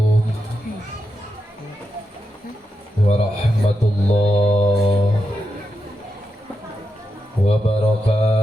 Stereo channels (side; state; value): both; normal; correlation 0.87